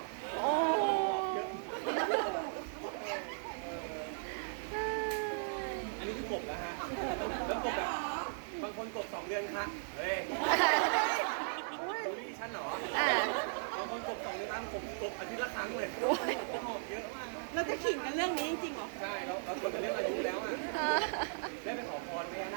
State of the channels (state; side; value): silent; left; digital silence